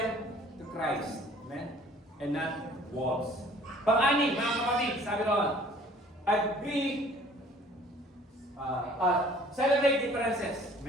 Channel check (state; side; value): normal; both; correlation 0.53